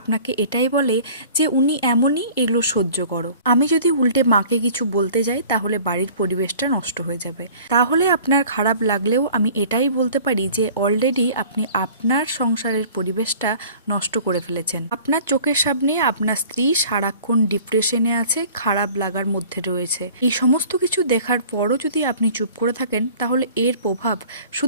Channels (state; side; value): inverted; both; correlation -0.47